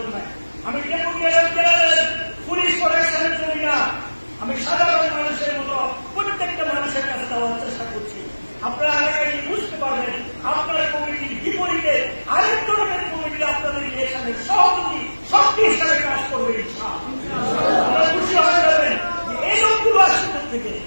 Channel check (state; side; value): inverted; both; correlation -1.00